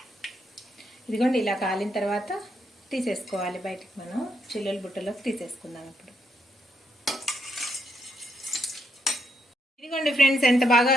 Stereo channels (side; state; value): both; normal; correlation 0.76